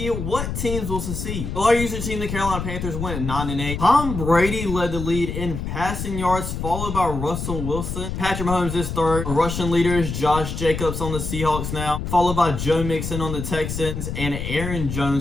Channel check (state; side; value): noise; left; rumble, 5 dB below the sound